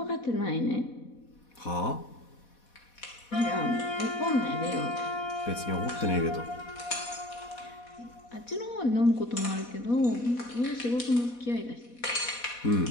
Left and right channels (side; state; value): right; late; 4.1 ms